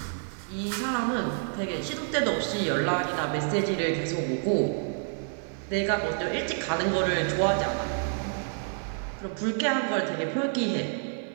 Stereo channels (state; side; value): silent; left; digital silence